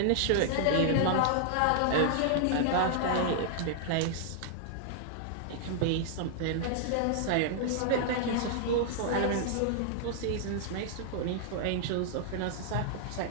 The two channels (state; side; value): different; both; correlation -0.01